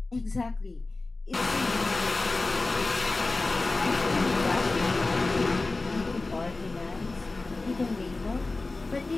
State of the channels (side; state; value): right; quieter; 3.4 dB